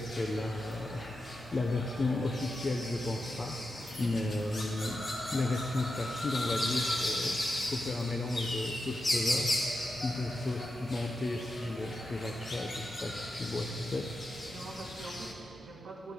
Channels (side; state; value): both; normal; correlation 0.89